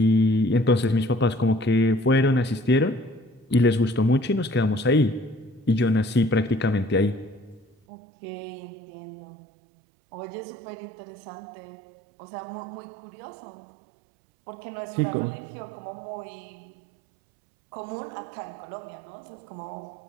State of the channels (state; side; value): drops out; left; at 7.8 s